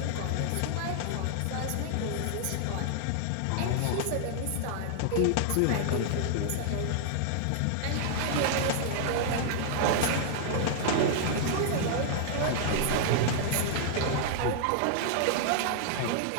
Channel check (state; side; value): different; both; correlation -0.01